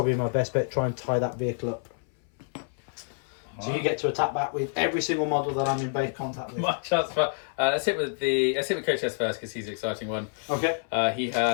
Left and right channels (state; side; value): silent; right; 59 dB below the other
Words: my best bet. Try and tie that vehicle up. So you get to attack back with every single model that I'm in base contact with. My chance, but let's hit with Cotiers first because he's the exciting one. Okay. He